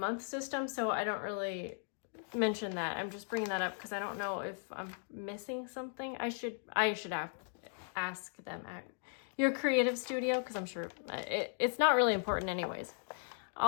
system, so I don't really mention that. I'm just bringing that up because I don't know if I'm missing something. I should ask them at Your Creative Studio because I'm sure it's not really important anyways.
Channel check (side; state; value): right; silent; 53 dB below the other